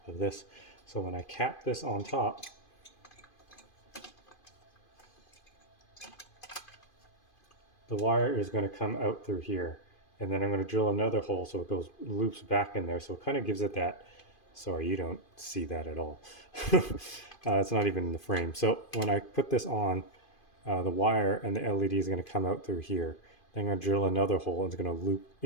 of this. So when I cap this on top, the wire is going to come out through here. And then I'm going to drill another hole so it goes loops back in there. So it kind of gives it that, sorry, you don't see that at all. It's not even in the frame. So when I put this on, the wire and the LED is going to come out through here. Then I'm going to drill another hole and it's going to loop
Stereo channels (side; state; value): right; late; 2.5 ms